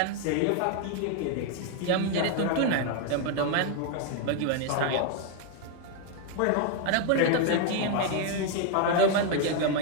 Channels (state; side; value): different; both; correlation 0.01